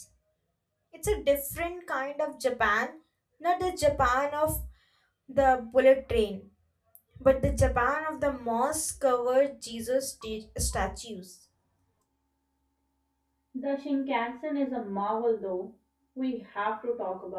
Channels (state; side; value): identical; both; correlation 1.00